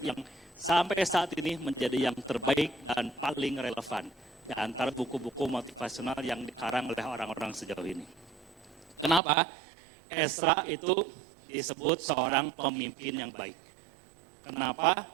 sampai saat ini menjadi yang terbaik dan paling relevan di antara buku-buku motivasional yang dikarang oleh orang-orang sejauh ini. Kenapa? Ezra itu disebut seorang pemimpin yang baik. Kenapa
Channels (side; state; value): left; drops out; at 9.2 s